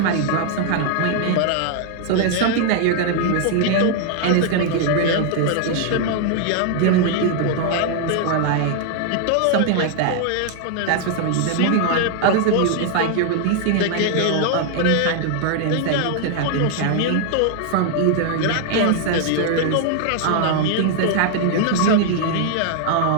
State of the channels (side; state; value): both; different; correlation 0.00